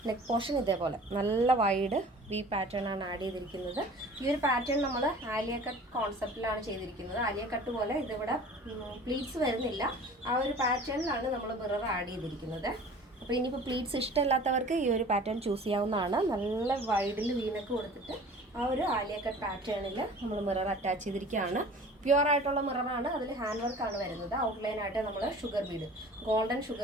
നെക്ക് പോർഷൻ ഇതേപോലെ നല്ല വൈഡ് വി പാറ്റേൺ ആണ് ആഡ് ചെയ്തിരിക്കുന്നത്. ഈ ഒരു പാറ്റേൺ നമ്മൾ ആലിയ കട്ട് കോൺസെപ്റ്റിലാണ് ചെയ്തിരിക്കുന്നത്. ആലിയ കട്ട് പോലെ ഇതിവിടെ പ്ലീറ്റ്സ് വരുന്നില്ല. ആ ഒരു പാറ്റേണിലാണ് നമ്മൾ മിറർ ആഡ് ചെയ്തിരിക്കുന്നത്. അപ്പോൾ ഇനിയിപ്പോൾ പ്ലീറ്റ്സ് ഇഷ്ടമില്ലാത്തവർക്ക് ഈ ഒരു പാറ്റേൺ ചൂസ് ചെയ്യാവുന്നതാണ്. നല്ല വൈഡിൽ വീനക്ക് കൊടുത്തിട്ട് ആ ഒരു ആലിയ കട്ട് പാറ്റേണിൽ നമ്മൾ മിറർ അറ്റാച്ച് ചെയ്തിരിക്കുകയാണ്. പ്യുവർ ആയിട്ടുള്ള മിററാണ്. അതിൽ ഹാൻഡ് വർക്കാണ് വരുന്നത്. ഔട്ട്ലൈനായിട്ട് നമ്മൾ sugar Bede, golden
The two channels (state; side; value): normal; both; correlation 0.44